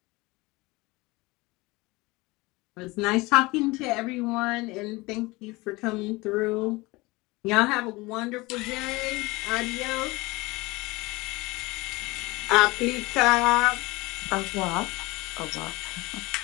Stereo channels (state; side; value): quieter; right; 22.8 dB